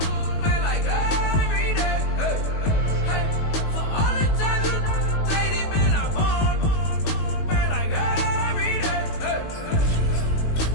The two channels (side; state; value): right; late; 19 ms